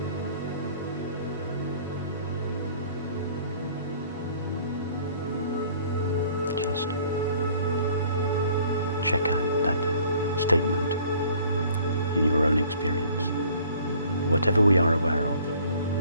Just check out that statement in your own experience. Whatever we are aware of,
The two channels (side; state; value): both; inverted; correlation -0.55